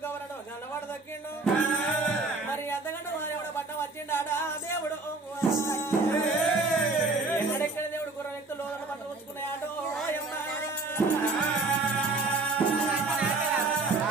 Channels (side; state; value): left; quieter; 3.5 dB